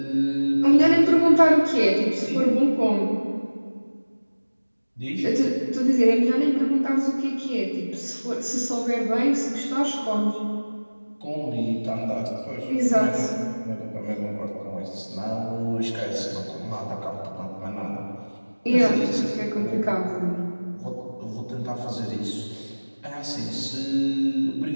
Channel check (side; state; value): both; inverted; correlation -1.00